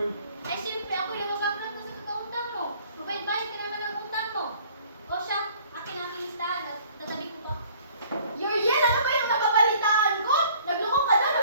Ay, siyempre ako yung mabaglag mo sa kakautang mo. Magbayad ka naman ang utang mo. O siya, akin ang aking listahan at tatabi ko to. Yuriel, ano ba yung nababalitaan ko? Naglukong ka daw,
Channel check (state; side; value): inverted; both; correlation -0.55